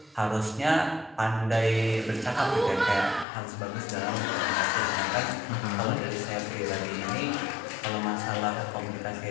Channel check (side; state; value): right; drops out; at 3.2 s